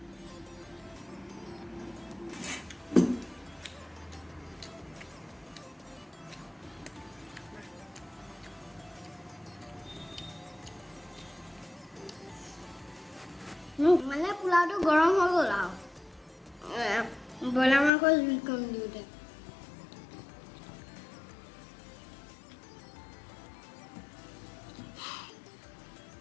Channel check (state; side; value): drops out; right; at 17.9 s